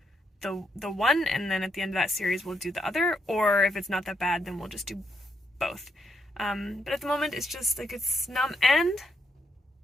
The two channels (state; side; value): normal; both; correlation 0.78